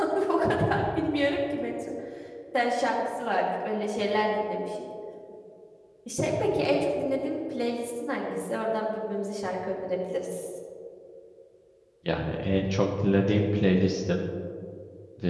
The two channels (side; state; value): both; identical; correlation 1.00